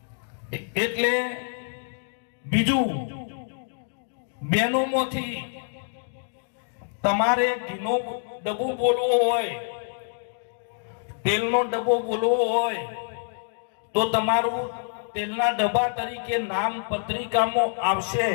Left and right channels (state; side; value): silent; right; digital silence